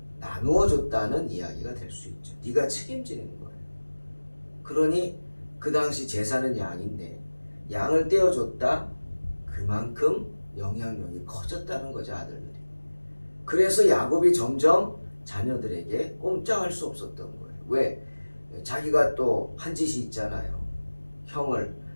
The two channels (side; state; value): both; inverted; correlation -1.00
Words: 나누어 줬다는 이야기가 될 수 있죠. 네가 책임지는 거예요. 그러니 그 당시 제사는 양인데 양을 떼어줬다, 그만큼 영향력이 커졌다는 거죠, 아들들이. 그래서 야곱이 점점 자녀들에게 꼼짝할 수 없었던 거예요. 왜? 자기가 또 한 짓이 있잖아요. 형을